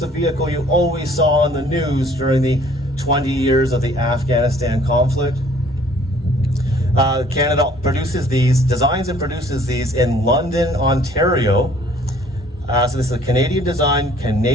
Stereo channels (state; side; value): normal; both; correlation 0.57